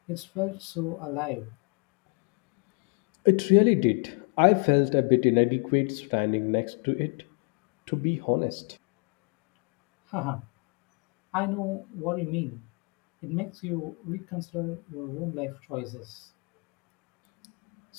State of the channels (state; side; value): quieter; right; 36.0 dB